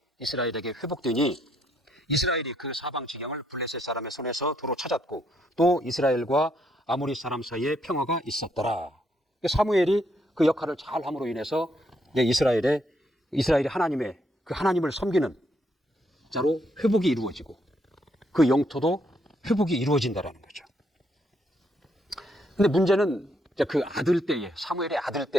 이스라엘에게 회복되니 이스라엘이 그 사방 지경을 블레셋 사람의 손에서 도로 찾았고 또 이스라엘과 아모리 사람 사이에 평화가 있었더라. 사무엘이 그 역할을 잘 함으로 인해서 이스라엘이 하나님을 섬기는 자로 회복이 이루어지고 그 영토도 회복이 이루어진다라는 거죠. 근데 문제는 그 사무엘의 아들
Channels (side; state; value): both; normal; correlation 0.74